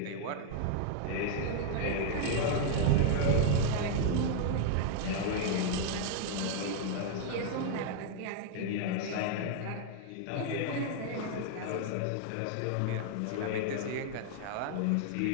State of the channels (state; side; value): different; both; correlation 0.00